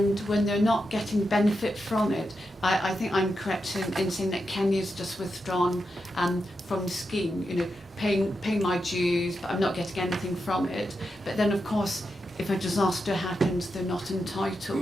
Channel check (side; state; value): both; normal; correlation 0.87